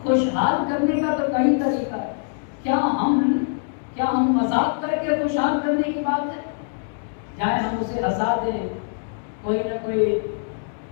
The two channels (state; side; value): silent; right; digital silence